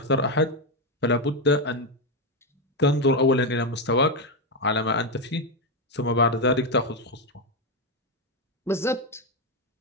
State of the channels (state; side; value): normal; both; correlation 0.07